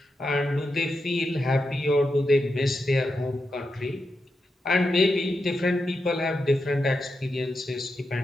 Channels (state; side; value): normal; both; correlation 0.87